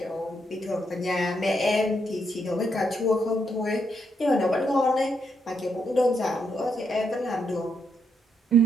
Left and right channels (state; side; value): normal; both; correlation 0.78